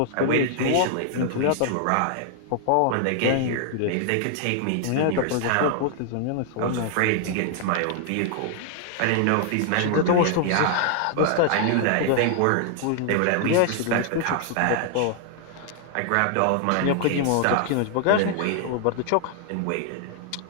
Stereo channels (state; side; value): different; both; correlation 0.00